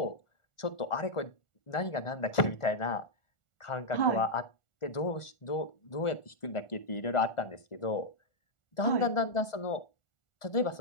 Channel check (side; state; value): right; late; 1.4 ms